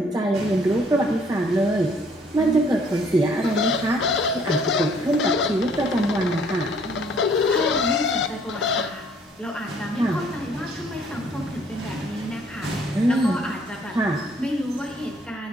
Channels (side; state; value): both; normal; correlation 0.62